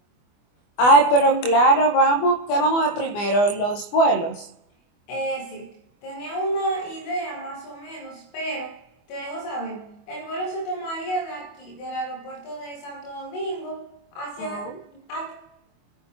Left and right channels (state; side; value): late; right; 24 ms